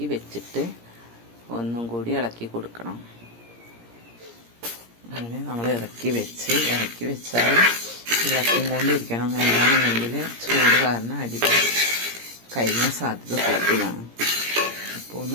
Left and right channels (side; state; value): left; late; 17 ms